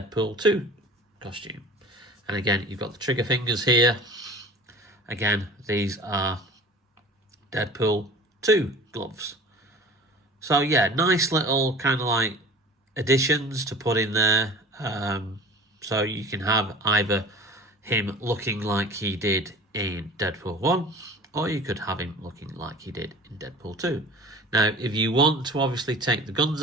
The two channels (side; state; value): both; normal; correlation 0.41